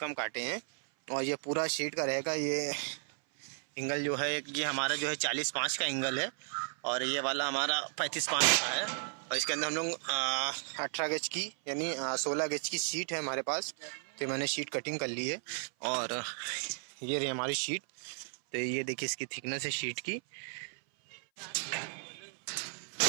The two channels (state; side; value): silent; left; 55 dB below the other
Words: काटे हैं। और ये पूरा शीट का रहेगा। ये एंगल जो है ये हमारा जो है 40/5 का एंगल है और ये वाला हमारा 35/5 का है। और इसके अंदर हम लोग 18 गेज की यानी 16 गेज की शीट है हमारे पास। तो मैंने शीट कटिंग कर ली है और ये रही हमारी शीट। तो ये देखिए इसकी थिकनेस है शीट की।